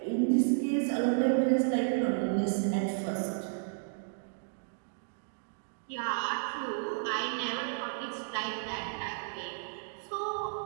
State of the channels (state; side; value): silent; left; digital silence